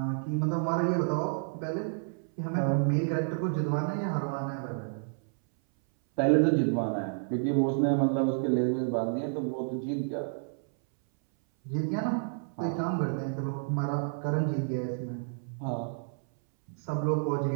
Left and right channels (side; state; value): left; silent; 58 dB below the other